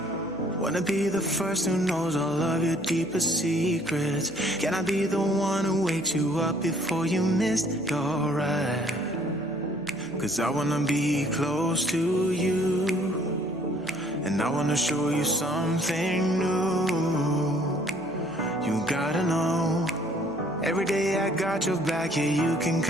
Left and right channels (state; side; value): noise; left; hum, 27 dB below the sound